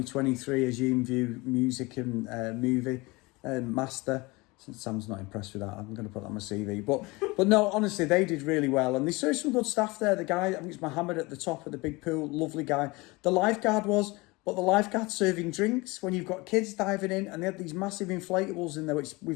Aegean View music and movie master. Since Sam's not impressed with that, I'm going to put that on my CV. But no, honestly, they did really well. And they served some good staff there. The guy, I think it's Mohammed at the top of the big pool, lovely guy. The lifeguard was... But the lifeguard's serving drinks when you've got kids diving in, and they had these massive inflatables in there, which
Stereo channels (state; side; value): quieter; right; 24.0 dB